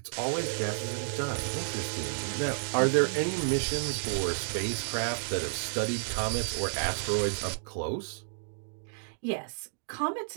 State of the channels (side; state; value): left; silent; digital silence